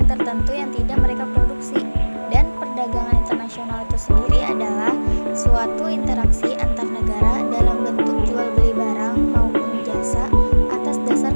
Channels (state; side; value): inverted; both; correlation -1.00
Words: tertentu yang tidak mereka produksi. Dan perdagangan internasional itu sendiri adalah suatu interaksi antar negara dalam bentuk jual beli barang maupun jasa atas dasar